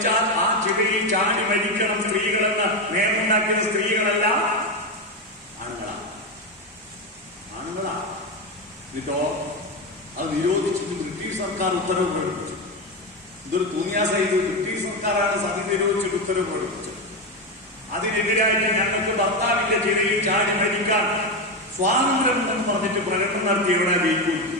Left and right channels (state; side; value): normal; both; correlation 0.13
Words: ആ ചിതയിൽ ചാടി മരിക്കണം സ്ത്രീകളെന്ന് നിയമമുണ്ടാക്കിയ സ്ത്രീകളല്ല, ആണുങ്ങളാണ്. എന്നിട്ടോ അത് നിരോധിച്ചിട്ട് ബ്രിട്ടീഷ് സർക്കാർ ഉത്തരവ് പ്രകടിപ്പിച്ചു. ഇതൊരു തൂങ്ങിയാസായിട്ട് ബ്രിട്ടീഷ് സർക്കാരാണ് സതി നിരോധിച്ചിട്ട് ഉത്തരവ് പ്രകടിപ്പിച്ചത്. അതിനെതിരായിട്ട് ഞങ്ങൾക്ക് ഭർത്താവിന്റെ ചിതയിൽ ചാടി മരിക്കാൻ സ്വാതന്ത്ര്യം എന്ന് പറഞ്ഞിട്ട് പ്രകടനം നടത്തി എവിടെ ജയിക്കും